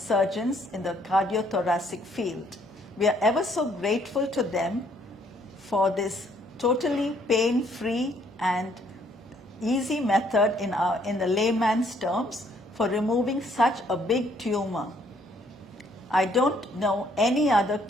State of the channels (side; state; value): both; normal; correlation 0.66